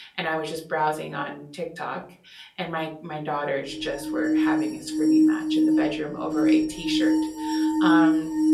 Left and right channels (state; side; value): identical; both; correlation 1.00